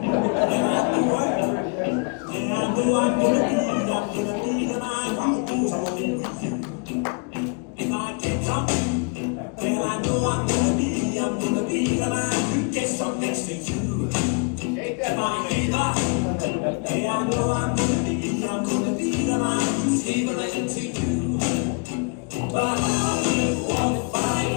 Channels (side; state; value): right; quieter; 36.8 dB